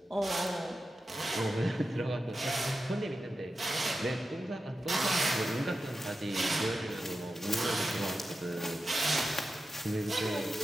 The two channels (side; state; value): both; normal; correlation 0.91